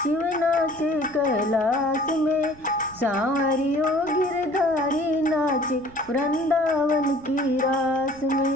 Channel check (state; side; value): noise; right; rumble, 23 dB below the sound